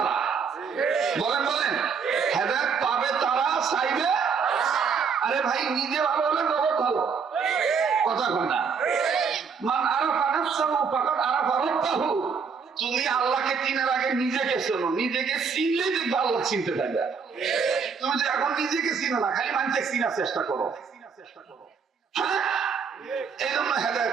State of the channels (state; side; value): quieter; left; 5.9 dB